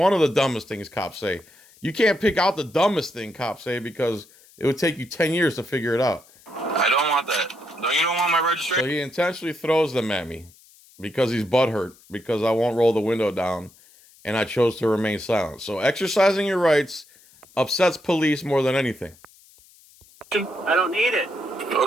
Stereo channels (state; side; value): noise; left; hiss, 27 dB below the sound